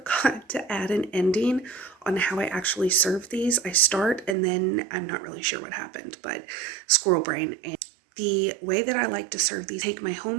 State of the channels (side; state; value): left; drops out; at 4.4 s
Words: to add an ending on how I actually serve these. I start and then I'm not really sure what happened, but squirrel brain. And the way that I like to serve these, take my